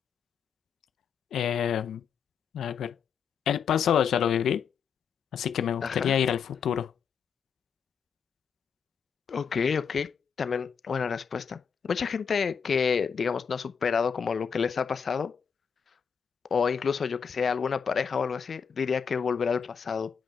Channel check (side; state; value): right; quieter; 6.8 dB